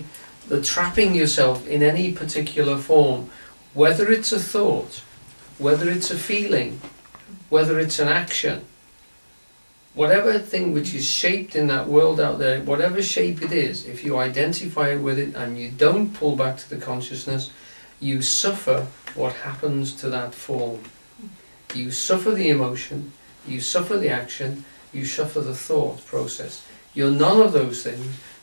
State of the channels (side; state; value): both; inverted; correlation -1.00